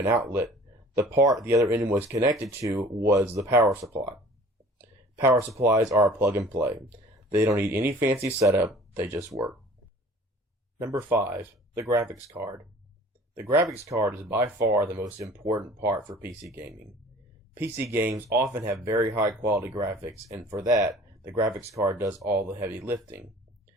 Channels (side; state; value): both; normal; correlation 0.48